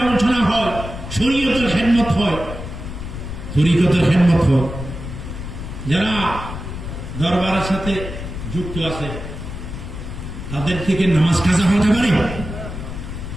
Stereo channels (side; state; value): left; noise; rumble, 8 dB below the sound